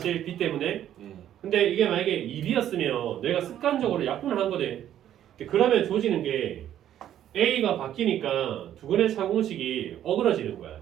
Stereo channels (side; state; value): left; quieter; 11.1 dB